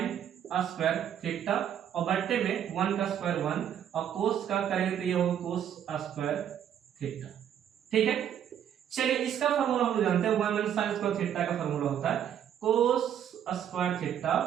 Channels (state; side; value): quieter; left; 9.6 dB